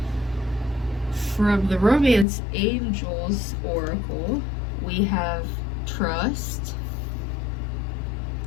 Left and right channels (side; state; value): right; drops out; at 2.2 s